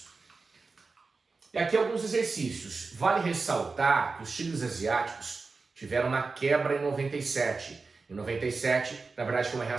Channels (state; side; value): quieter; left; 4.2 dB